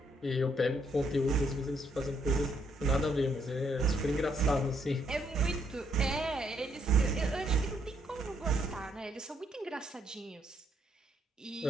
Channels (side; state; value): both; normal; correlation 0.72